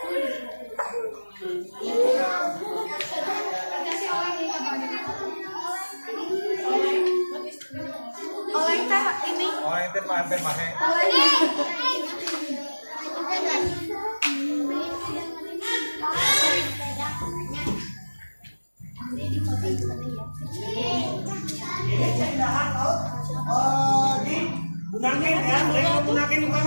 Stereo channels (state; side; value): inverted; both; correlation -1.00